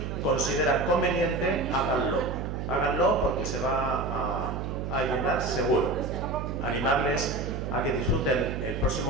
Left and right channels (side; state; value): right; noise; hum, 4 dB below the sound